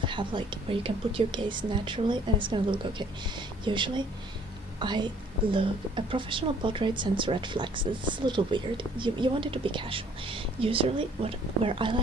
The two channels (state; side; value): normal; both; correlation 0.59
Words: have, like, where you can put your gaze naturally, and it's gonna look okay. Usually a professional portrait sends red flags. It's a little weird. You want it to be casual. Usually where I